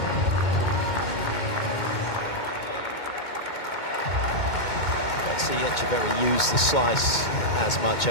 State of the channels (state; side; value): late; right; 2.2 ms